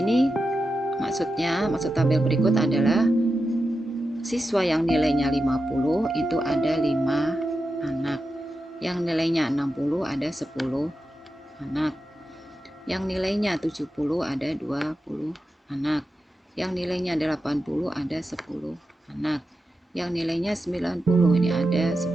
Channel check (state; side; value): normal; both; correlation 0.90